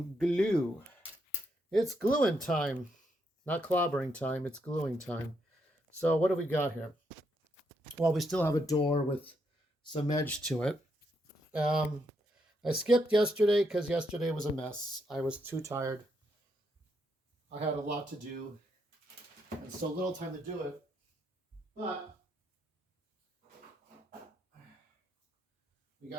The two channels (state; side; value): normal; both; correlation 0.78